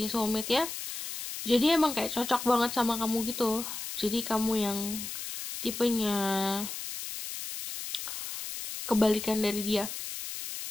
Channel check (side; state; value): left; noise; hiss, 7 dB below the sound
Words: soulmate ya. Jadi emang kayak cocok banget sama kamu gitu. Jadi kamu yang tipenya kebalikan dari dia.